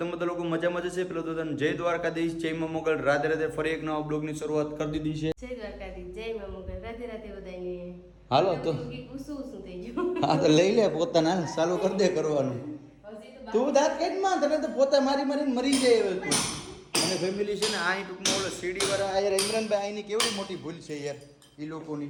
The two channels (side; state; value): both; identical; correlation 1.00